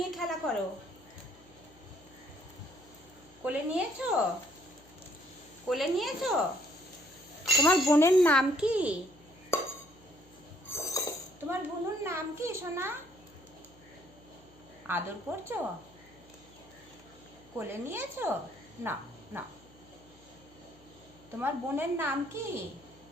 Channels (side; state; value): left; noise; hum, 27 dB below the sound